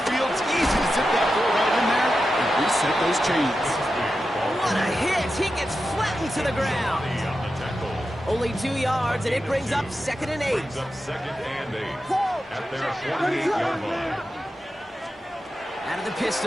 field. It's easy to zip that ball right in there and reset those chains. What a hit. He gets flattened to the ground. Only 2 yards, and it brings up 2nd and 8. Second and 8 at their 48-yard line. Out of the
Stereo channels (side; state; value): both; normal; correlation 0.90